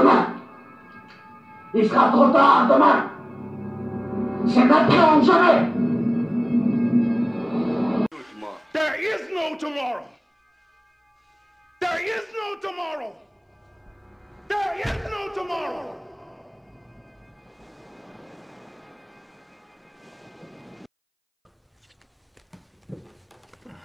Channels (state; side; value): identical; both; correlation 1.00